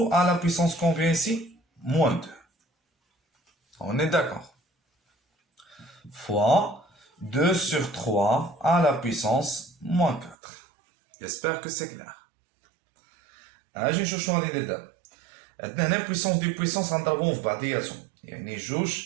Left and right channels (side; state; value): left; drops out; at 10.4 s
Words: à la puissance combien ici moins 2. On est d'accord. Fois 2 sur 3 à la puissance moins 4. J'espère que c'est clair. اجي نشوف شنو غادي ندير دابا. عندنا هنا بويسونس دي بويسونس غنضربوهم في بعضياتهم يعني 2